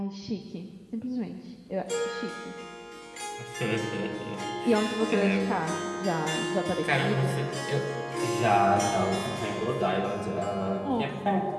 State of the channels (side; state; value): both; identical; correlation 1.00